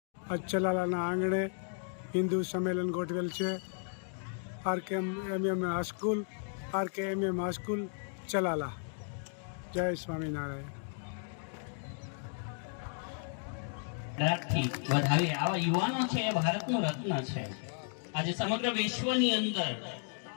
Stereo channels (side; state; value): right; silent; 55 dB below the other